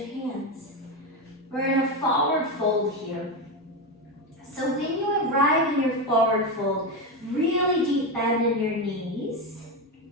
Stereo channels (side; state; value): both; normal; correlation 0.13